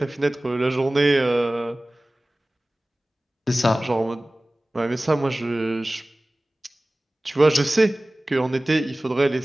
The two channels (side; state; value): both; normal; correlation 0.98